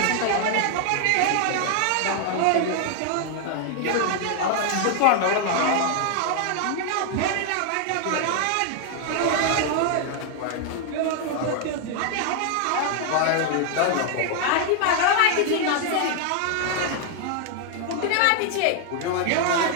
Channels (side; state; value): both; different; correlation 0.00